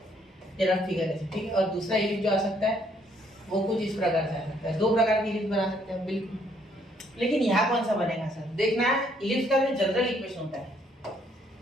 ये रफ फिगर है। ठीक है, और दूसरा इलिप्स जो आ सकता है वो कुछ इस प्रकार से आ सकता है। 2 प्रकार की इलिप्स बना सकते हैं बिल्कुल। लेकिन यहाँ कौन सा बनेगा सर? देखना, इलिप्स का जो जनरल इक्वेशन होता है,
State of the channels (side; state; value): both; normal; correlation 0.67